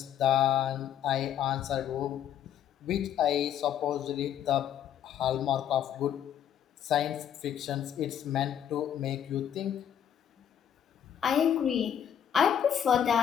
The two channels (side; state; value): right; quieter; 9.6 dB